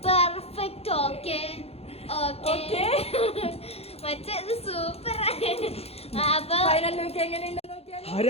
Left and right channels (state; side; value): late; right; 0.29 ms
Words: പെർഫെക്റ്റ് ഓക്കെ ഓക്കെ മറ്റേത് സൂപ്പർ അപ്പൊ ഫൈനൽ ലുക്ക് എങ്ങനെയുണ്ടെന്ന് നോക്കിയാൽ